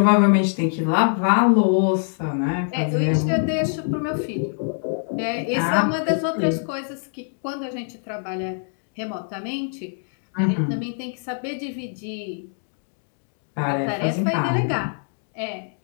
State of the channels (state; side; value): silent; right; 63 dB below the other